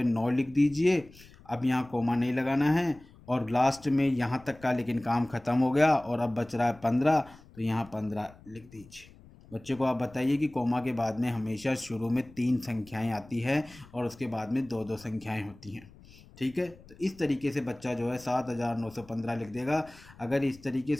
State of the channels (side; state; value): left; noise; rumble, 23 dB below the sound